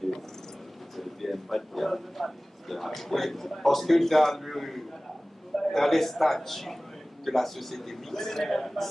que c'est le BMPAD qui a. Oui, parce que dans les statuts de la société mixte,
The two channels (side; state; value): both; normal; correlation 0.98